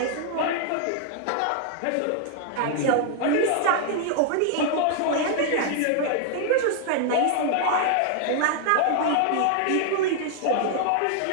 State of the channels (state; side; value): different; both; correlation 0.00